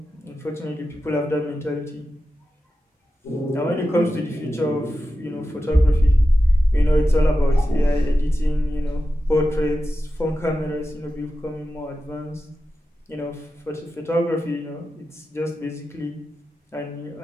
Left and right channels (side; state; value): both; normal; correlation 0.92